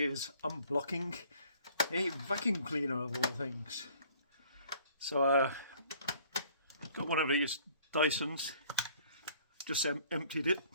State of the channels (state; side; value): inverted; both; correlation -0.56